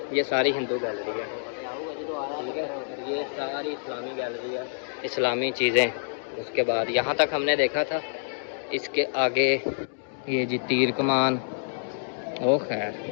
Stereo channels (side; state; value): right; silent; digital silence